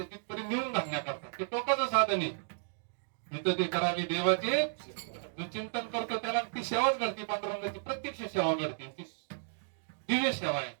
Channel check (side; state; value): left; silent; digital silence